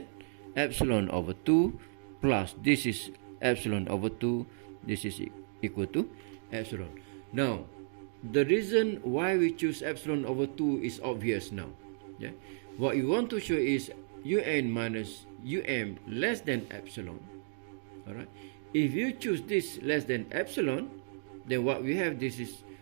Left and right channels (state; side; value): silent; left; digital silence